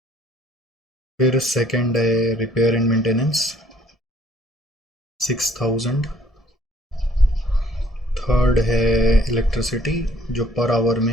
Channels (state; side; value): normal; both; correlation 0.61